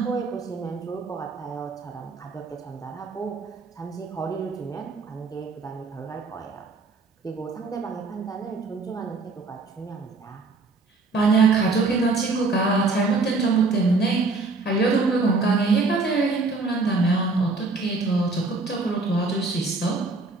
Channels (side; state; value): left; quieter; 3.7 dB